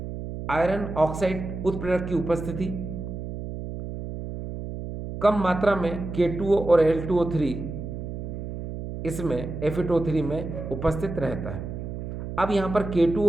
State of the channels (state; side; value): noise; right; hum, 7 dB below the sound